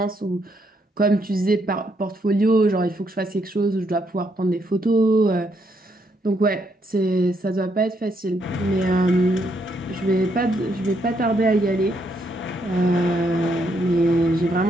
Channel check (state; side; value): normal; both; correlation 0.75